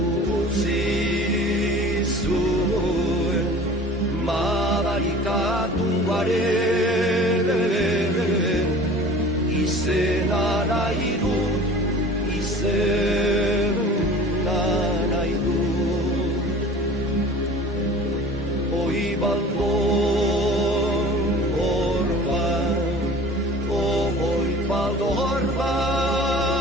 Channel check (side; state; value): both; normal; correlation 0.43